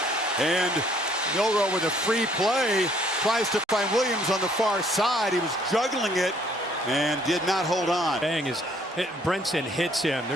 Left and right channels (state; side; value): normal; both; correlation 0.63